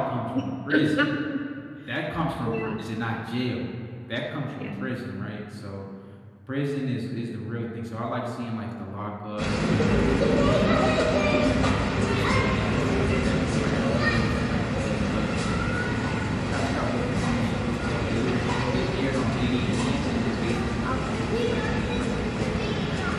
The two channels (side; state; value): both; identical; correlation 1.00